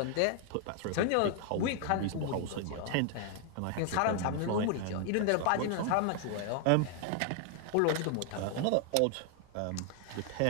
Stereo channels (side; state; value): both; different; correlation 0.00